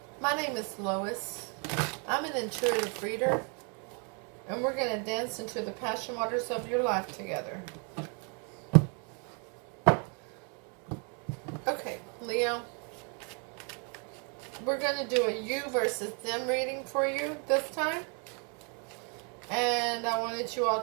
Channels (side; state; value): left; quieter; 37.7 dB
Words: My name is Lois. I'm an intuitive reader, and we're going to dance into the passion waters of your life together. Okay, Leo, we're going to do a you versus them reading for you this time. And I wanted you all